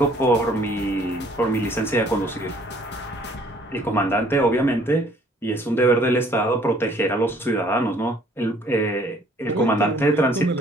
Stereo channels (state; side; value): normal; both; correlation 0.59